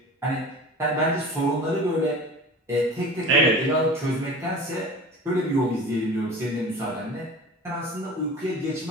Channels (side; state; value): both; normal; correlation 0.37